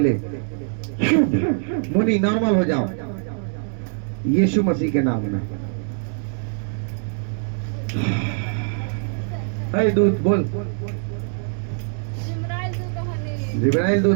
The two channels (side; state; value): left; silent; 63 dB below the other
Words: मुन्नी नॉर्मल हो जाओ यीशु मसीह के नाम में। अरे दूत बोल, जिब्राइल